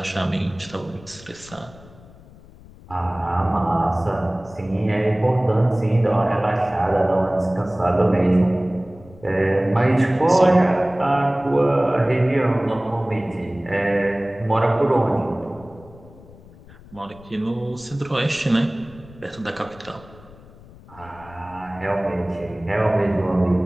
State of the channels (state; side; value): noise; left; rumble, 22 dB below the sound